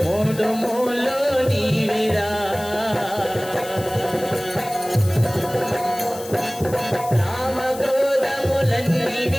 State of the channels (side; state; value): left; noise; hiss, 15 dB below the sound